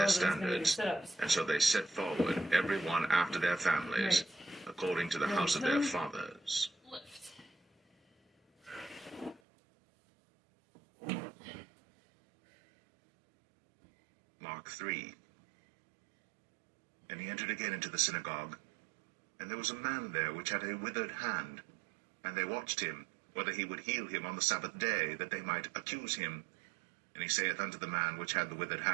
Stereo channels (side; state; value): left; drops out; at 9.4 s